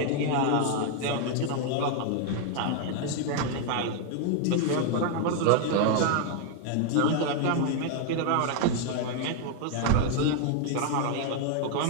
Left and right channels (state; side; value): different; both; correlation 0.00